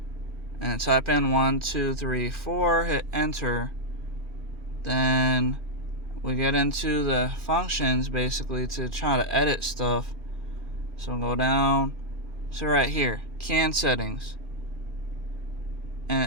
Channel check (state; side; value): late; left; 2.5 ms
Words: and type in 1, 2, 3, 4, hit enter, then we get into the functions basically to try to edit stuff. So go down So right here, CAN settings. And